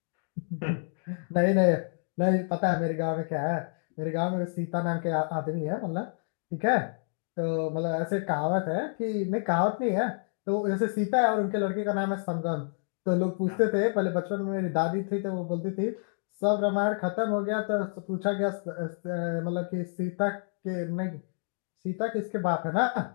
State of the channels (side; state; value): right; silent; digital silence